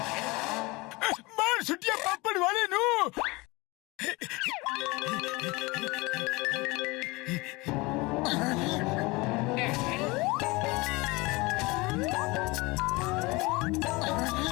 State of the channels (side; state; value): right; quieter; 23.9 dB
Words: मार छुट्टियां पापड़ वाले नो।